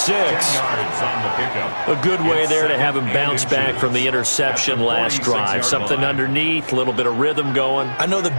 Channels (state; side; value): inverted; both; correlation -1.00